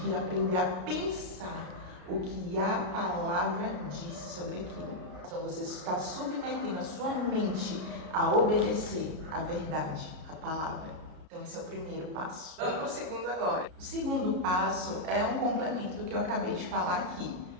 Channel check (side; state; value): left; late; 33 ms